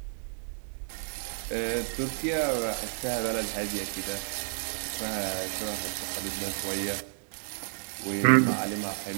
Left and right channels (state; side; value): silent; left; digital silence